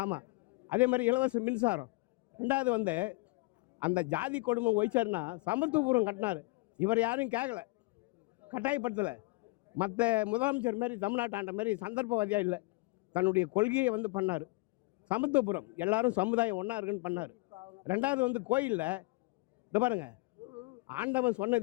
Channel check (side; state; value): right; quieter; 24.6 dB